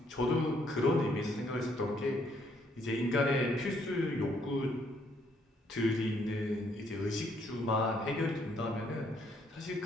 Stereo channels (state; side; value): normal; both; correlation 0.69